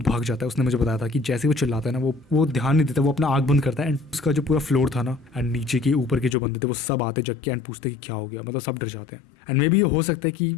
भाग जाता है। उसने मुझे बताया था कि जैसे वो चिल्लाता है ना वो ध्यान नहीं देता, वो अपना आँख बंद करता है एंड उसका जो पूरा फ्लोर था ना एंड नीचे के ऊपर के जो बंदे थे वो सब आते जग के एंड पूछते कि क्या हो गया, मतलब सब डर जाते हैं। एंड मे बी ये हो सकता है कि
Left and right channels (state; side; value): drops out; right; at 6.4 s